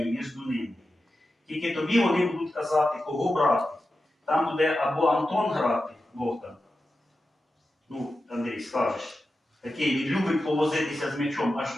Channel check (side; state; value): both; normal; correlation 0.92